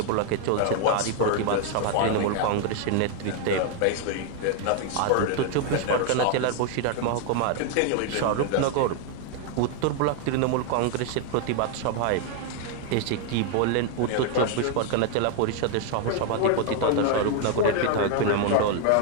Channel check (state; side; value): different; both; correlation 0.00